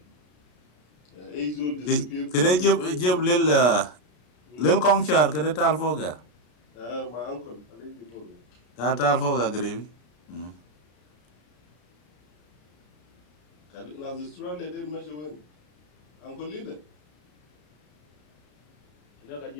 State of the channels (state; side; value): late; right; 33 ms